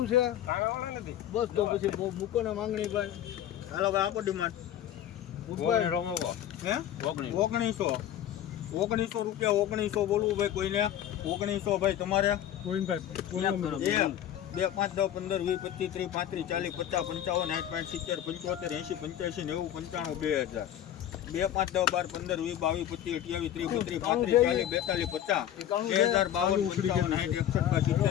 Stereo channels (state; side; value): quieter; right; 11.2 dB